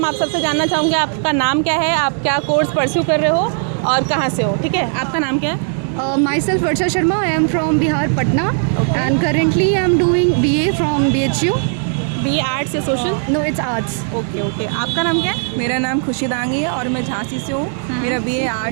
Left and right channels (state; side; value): silent; left; 68 dB below the other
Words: आप सबसे जानना चाहूँगी। आपका नाम क्या है, आप क्या कोर्स परस्यू कर रहे हो और कहाँ से हो? ठीक है, आपका नाम क्या है? Myself Varsha Sharma. I am from Bihar, Patna, and currently I am doing BA from BHU. BA arts या social? No, it's arts. Okay. आपका नाम क्या है? मेरा नाम खुशी दांगी है और मैं झांसी से हूँ। मेरा BA